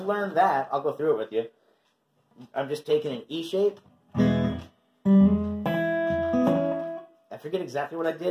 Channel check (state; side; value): identical; both; correlation 1.00